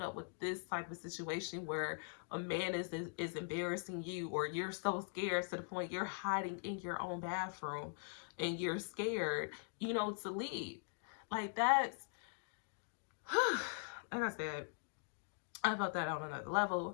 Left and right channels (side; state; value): right; silent; digital silence